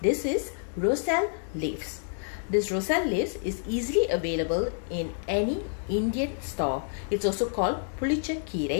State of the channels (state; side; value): silent; right; digital silence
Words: This is roselle leaves. This roselle leaves is easily available in any Indian store. It's also called Pulicha